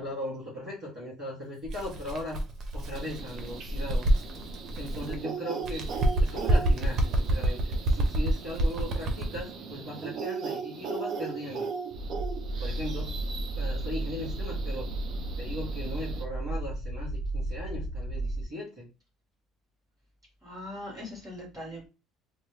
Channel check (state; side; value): normal; both; correlation 0.67